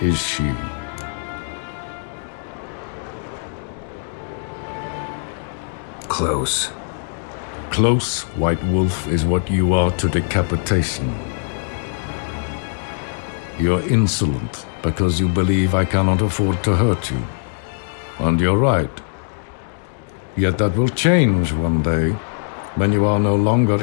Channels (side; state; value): right; silent; digital silence